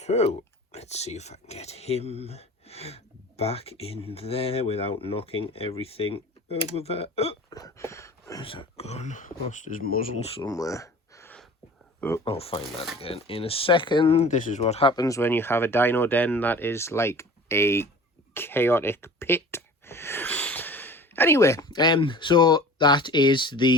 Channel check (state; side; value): normal; both; correlation 0.42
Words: So let's see if I can get him back in there without knocking everything over there. Oh, where's that gone? Lost his muzzle somewhere. Oh, I'll find that again in a second. This is what happens when you have a dino den that is like a chaotic pit. Anyway, so that is